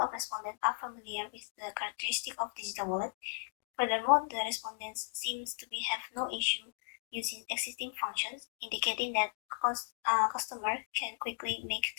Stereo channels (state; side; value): silent; right; digital silence